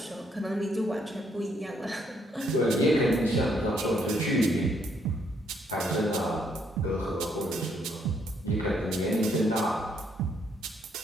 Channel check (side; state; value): both; normal; correlation 0.71